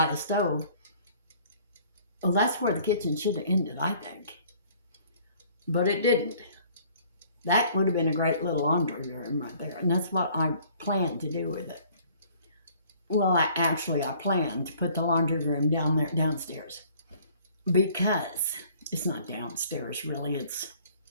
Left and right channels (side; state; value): both; inverted; correlation -0.56